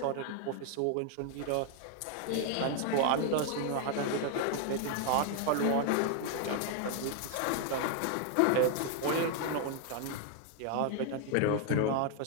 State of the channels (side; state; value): both; different; correlation 0.00